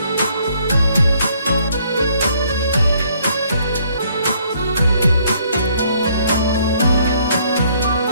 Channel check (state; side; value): inverted; both; correlation -0.66